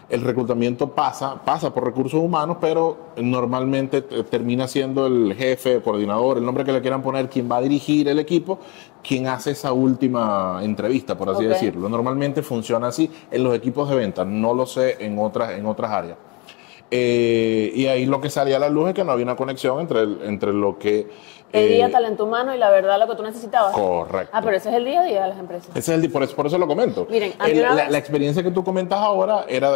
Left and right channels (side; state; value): right; quieter; 28.1 dB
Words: el reclutamiento pasa por recursos humanos, pero normalmente termina siendo el jefe, el coordinador, el nombre que le quieran poner, quien va a dirigir el equipo, quien hace esa última entrevista, por así decirlo. Normalmente funciona así en los equipos de venta, no lo sé en otras áreas. Y ahí lo que salía a la luz es que no había una conexión entre lo que... Pedía talento humano y la verdad lo que tú necesitabas. Correcto. Pero ese es el día a día de las empresas. Ese es por eso lo comento. Miren, la experiencia que tú comentas ahora